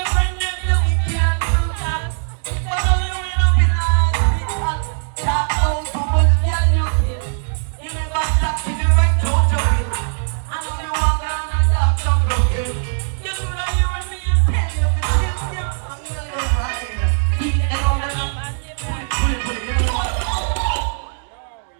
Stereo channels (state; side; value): silent; left; 63 dB below the other